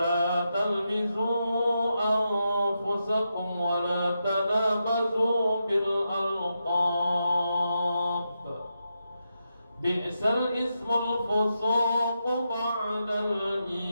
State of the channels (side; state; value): both; inverted; correlation -0.86